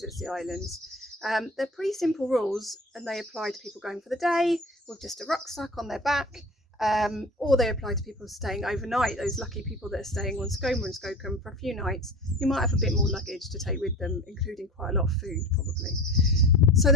the islands. They're pretty simple rules, and they apply to people going for the day with just a rucksack on their back, or they apply to people staying overnight, those lucky people that are staying on Skoma and Skokkum for a few nights, who might have a bit more luggage to take with them, including quite a lot of food probably. So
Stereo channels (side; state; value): both; normal; correlation 0.36